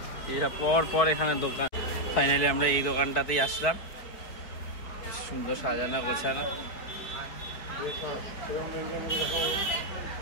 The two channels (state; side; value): late; right; 4.6 ms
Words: এরা পর পর এখানে দোকান। ফাইনালি আমরা এই দোকানটাতেই আসলাম, সুন্দর সাজানো গোছানো।